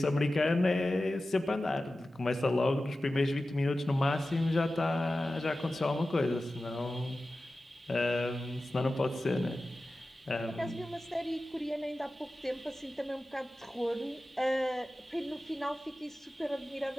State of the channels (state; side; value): normal; both; correlation 0.95